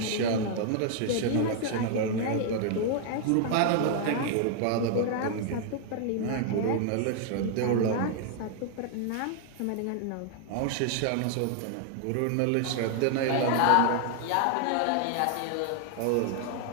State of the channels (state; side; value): different; both; correlation 0.00